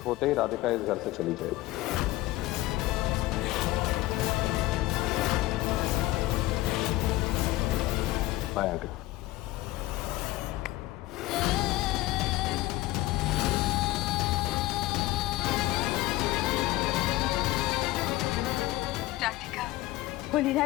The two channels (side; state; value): right; quieter; 17.5 dB